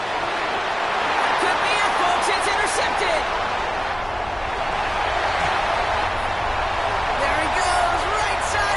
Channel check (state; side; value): noise; left; rumble, 20 dB below the sound